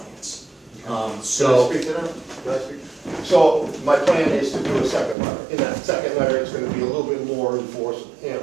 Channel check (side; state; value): left; drops out; at 5.2 s